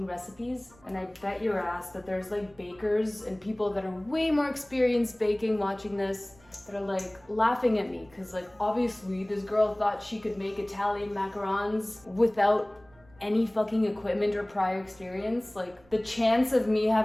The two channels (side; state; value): right; noise; rumble, 28 dB below the sound